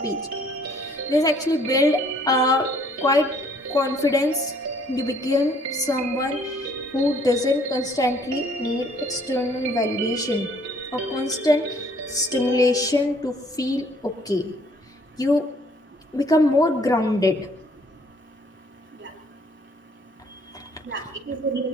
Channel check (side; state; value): both; normal; correlation 0.61